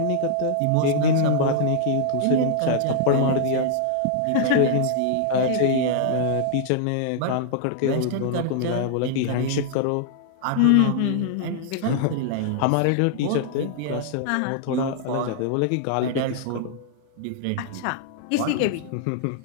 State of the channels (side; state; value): both; different; correlation -0.01